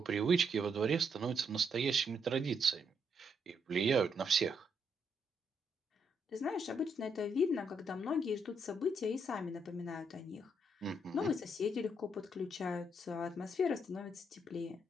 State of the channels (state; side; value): normal; both; correlation 0.76